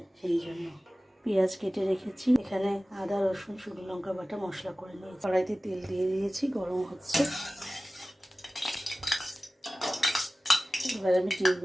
সেই জন্য পেঁয়াজ কেটে রেখেছি। এখানে আদা রসুন শুকনো লঙ্কা বাটা মশলা করে নিয়েছি। কড়াইতে তেল দিয়ে দিয়েছি, গরম হচ্ছে। এবার আমি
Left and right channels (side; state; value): both; normal; correlation 0.97